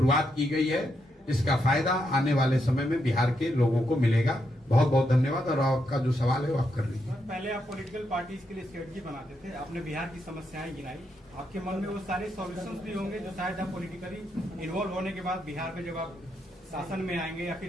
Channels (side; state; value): both; normal; correlation 0.81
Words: की गई है, इसका फायदा आने वाले समय में बिहार के लोगों को मिलेगा। बहुत बहुत धन्यवाद। और आपका जो सवाल है वो आप कर लीजिए। पहले आप पॉलिटिकल पार्टीज के लिए स्ट्रेटजी बनाते थे, आपने बिहार की समस्याएं गिनाई, आपके मन में वो सारे सॉल्यूशंस भी होंगे जो शायद आप पॉलिटिकली इन्वॉल्व होने के बाद बिहार में जब आप शासन में आएंगे या